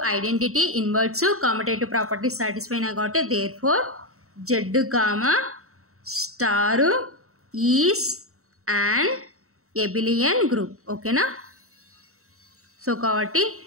identity, inverse, commutative properties satisfy అయినాయి కాబట్టి therefore Z comma star is and abelian group. ఓకేనా. So కాబట్టి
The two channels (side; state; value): left; late; 0.64 ms